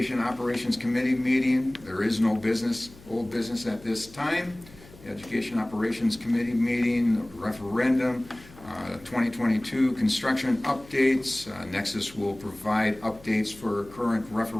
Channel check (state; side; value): noise; left; hum, 22 dB below the sound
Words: Operations Committee meeting. There is no business, old business at this time. Education Operations Committee meeting, referendum, 2022 construction updates. Nexus will provide updates for current